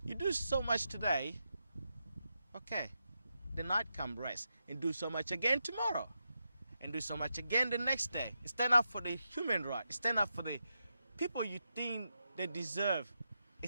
you do so much today, okay, the night come rest and do so much again tomorrow and do so much again the next day. Stand up for the human right. Stand up for the people you think they deserve.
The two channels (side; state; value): both; inverted; correlation -0.86